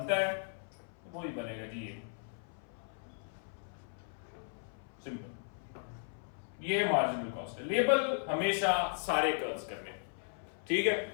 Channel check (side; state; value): right; silent; 53 dB below the other